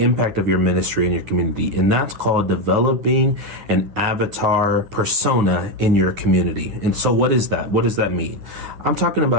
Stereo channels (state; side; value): late; left; 9.9 ms